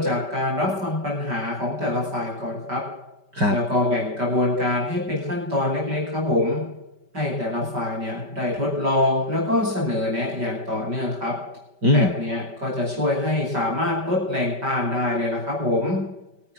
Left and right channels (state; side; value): late; left; 5.1 ms